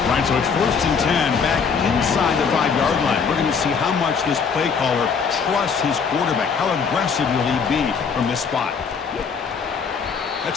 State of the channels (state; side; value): quieter; right; 5.9 dB